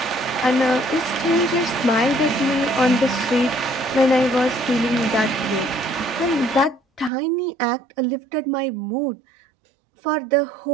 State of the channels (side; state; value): left; drops out; at 7.1 s